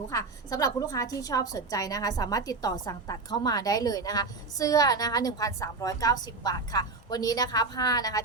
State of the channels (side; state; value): left; quieter; 3.8 dB